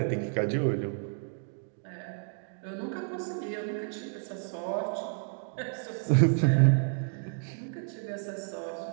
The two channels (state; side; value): silent; left; 57 dB below the other